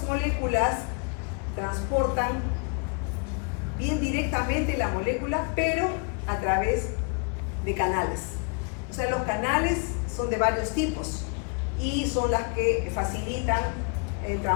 moléculas transportan bien directamente la molécula, pero a través de canales. O sea, los canales son de varios tipos y son las que facilitan el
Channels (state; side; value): quieter; right; 37.4 dB